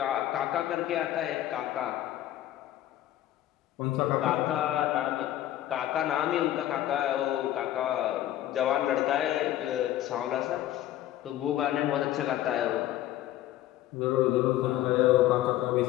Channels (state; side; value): quieter; right; 13.4 dB